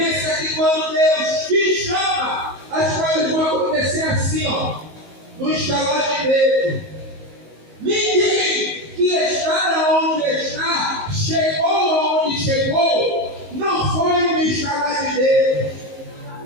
que quando Deus te chama, as coisas vão acontecer assim, ó, no estalar de dedo. Ninguém que está onde está, chegou aonde chegou, não foi no estalar de dedo.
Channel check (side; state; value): left; late; 19 ms